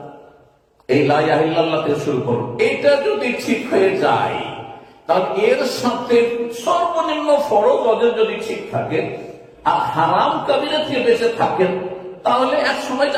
এই লা ইলাহা ইল্লাল্লাহ থেকে শুরু করুন। এটা যদি ঠিক হয়ে যায়, তাহলে এর সাথে সর্বনিম্ন ফরজ ওদের যদি ঠিক থাকে আর হারাম কাবিরা থেকে বেঁচে থাকেন, তাহলে এক সময়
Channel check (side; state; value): both; identical; correlation 1.00